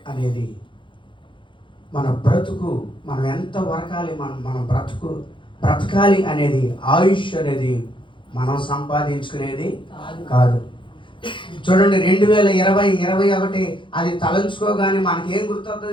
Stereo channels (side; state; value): right; late; 0.24 ms